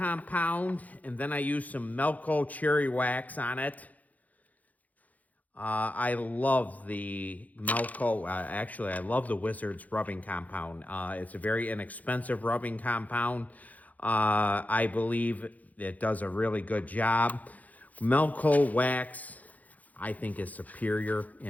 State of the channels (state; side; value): late; right; 0.077 ms